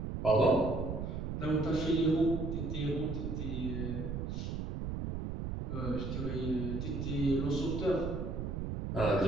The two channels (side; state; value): right; noise; rumble, 3 dB below the sound